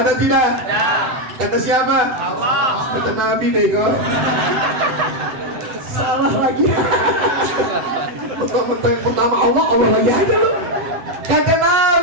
tidak? Kata siapa? Allah. Kata Nabi deh kok. Salah lagi. Pertama Allah, Allah lagi ada loh. Kata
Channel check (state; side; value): late; left; 8.0 ms